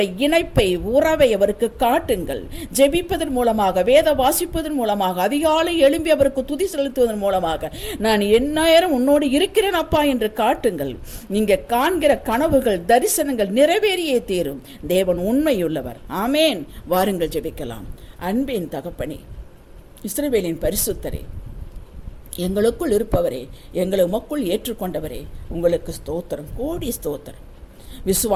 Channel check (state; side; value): identical; both; correlation 1.00